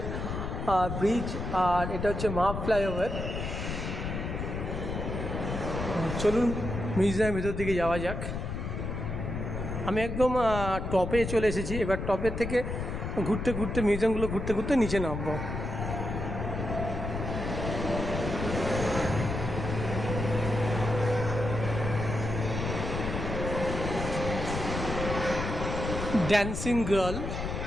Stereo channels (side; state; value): left; noise; rumble, 4 dB below the sound